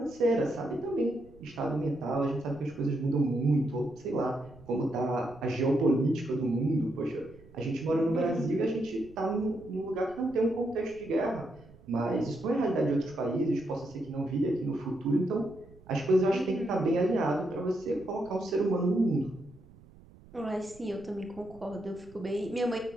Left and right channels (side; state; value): right; noise; rumble, 23 dB below the sound